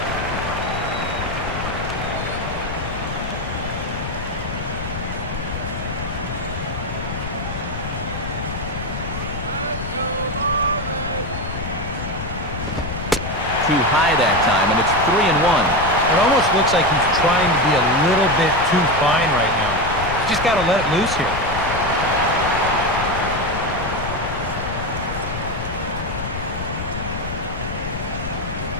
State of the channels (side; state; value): left; noise; rumble, 7 dB below the sound